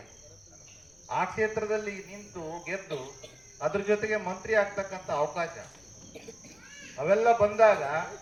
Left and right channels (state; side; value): noise; left; rumble, 30 dB below the sound